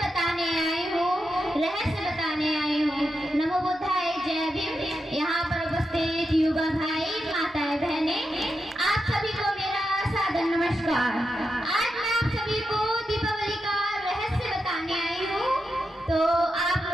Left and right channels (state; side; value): normal; both; correlation 0.87